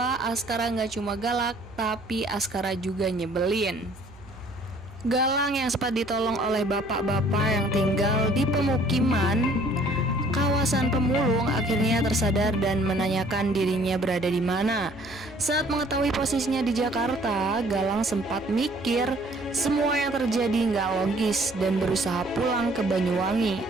Askara gak cuma galak, tapi Askara juga nyebelin. Galang yang sempat ditolong oleh bapak-bapak yang tinggal di pemukiman kawasan pemulung akhirnya tersadar dan menanyakan dirinya berada di mana. Saat mengetahui posisinya di Jakarta, Galang sempat mikir semua yang terjadi nggak logis dan berusaha pulang ke Banyuwangi.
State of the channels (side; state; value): right; noise; hum, 21 dB below the sound